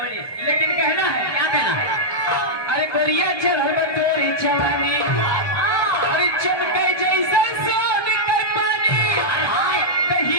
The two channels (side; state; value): right; late; 1.2 ms